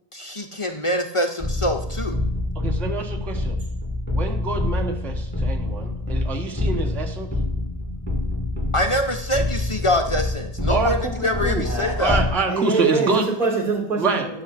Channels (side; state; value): right; late; 1.4 ms